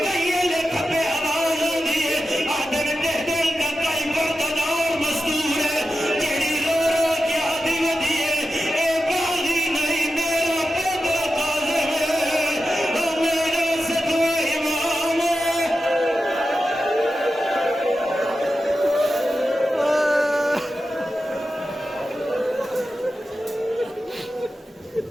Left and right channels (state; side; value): normal; both; correlation 0.91